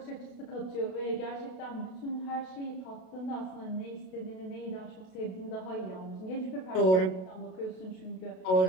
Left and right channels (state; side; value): late; right; 32 ms